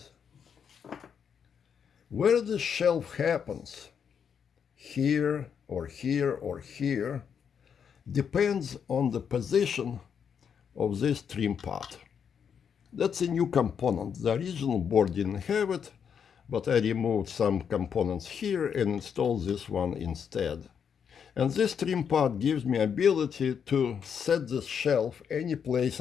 where the shelf happens, here or here or here, depends on the position of this trim pot. That's a new component. The original board didn't have it, but I removed some components here and installed this one instead. And this trim pot gives me ability to set this shelf any place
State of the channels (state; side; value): quieter; right; 7.4 dB